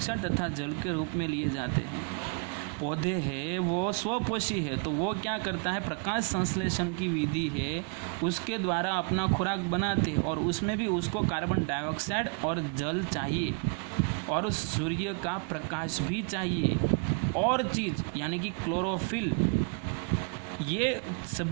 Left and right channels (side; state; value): left; quieter; 39.0 dB